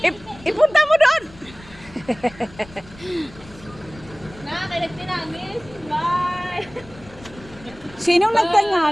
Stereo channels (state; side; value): noise; left; rumble, 20 dB below the sound